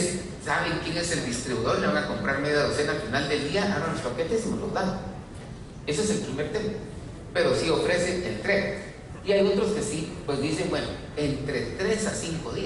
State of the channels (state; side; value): identical; both; correlation 1.00